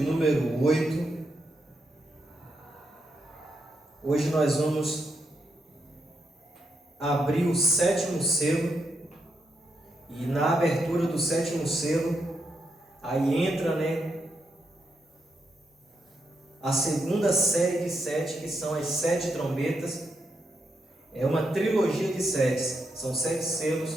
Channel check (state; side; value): normal; both; correlation 0.81